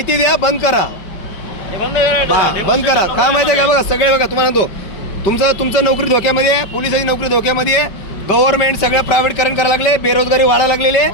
द्या. बंद करा. हे बंद करा. बंद करा. काय माहिती आहे का? बघा सगळे बघा तुम्हाला तो तुमचं नोकरी धोक्यामध्ये आहे. पोलिसांची नोकरी धोक्यामध्ये आहे. गव्हर्नमेंट सगळं प्रायव्हेटकरण करायला लागले. बेरोजगारी वाढायला लागलेली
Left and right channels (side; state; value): right; late; 5.1 ms